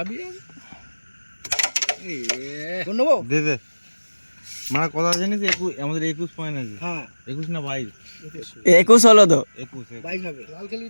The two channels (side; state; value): both; inverted; correlation -1.00